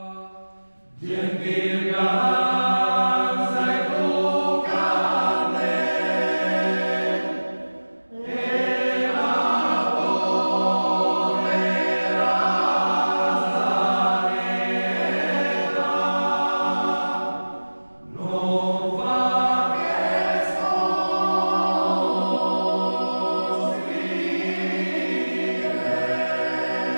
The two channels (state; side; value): inverted; both; correlation -1.00